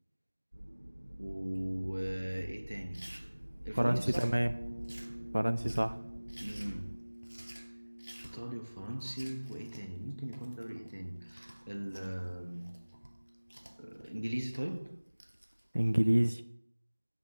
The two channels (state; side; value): inverted; both; correlation -1.00